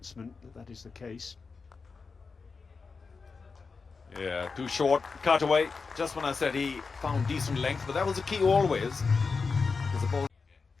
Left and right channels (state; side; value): quieter; right; 4.7 dB